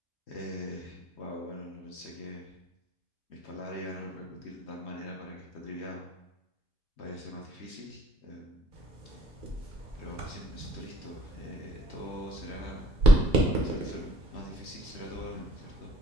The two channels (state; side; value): normal; both; correlation 0.59